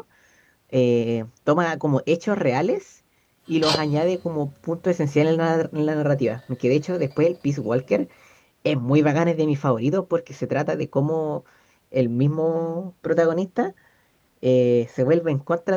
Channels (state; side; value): identical; both; correlation 1.00